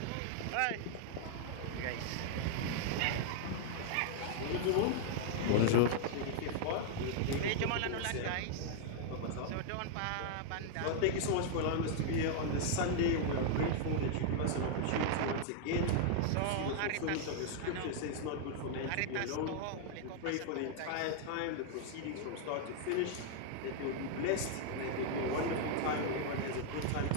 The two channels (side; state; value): both; different; correlation 0.00